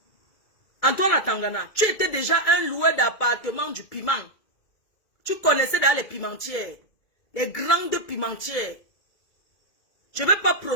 Antoine Atangana, tu étais déjà un loueur d'appartement du piment. Tu connaissais dans les pimentières. Les grandes pimentières. Je ne vais pas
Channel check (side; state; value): right; late; 2.3 ms